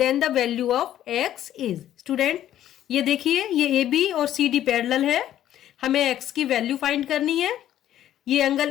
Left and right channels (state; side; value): quieter; right; 11.9 dB